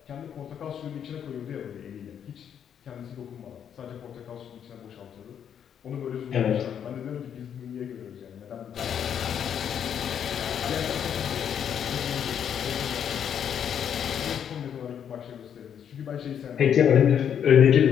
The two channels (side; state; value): right; quieter; 8.6 dB